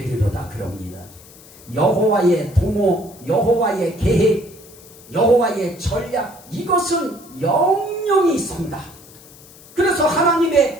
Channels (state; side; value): noise; left; hiss, 22 dB below the sound